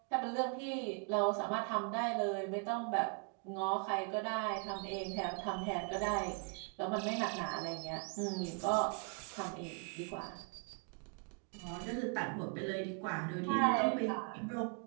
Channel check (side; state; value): left; quieter; 38.3 dB